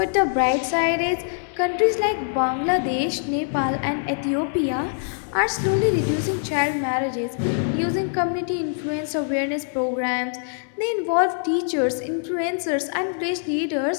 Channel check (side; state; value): right; silent; digital silence